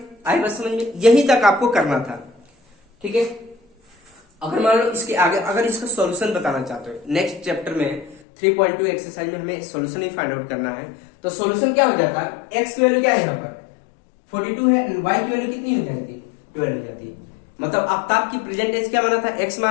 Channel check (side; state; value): right; drops out; at 8.2 s